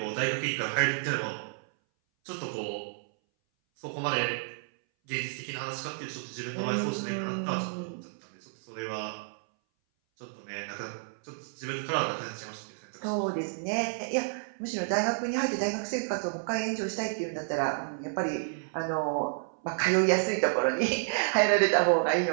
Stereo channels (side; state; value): left; silent; 57 dB below the other